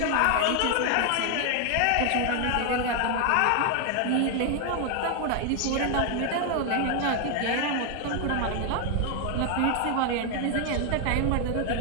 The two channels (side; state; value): both; different; correlation 0.00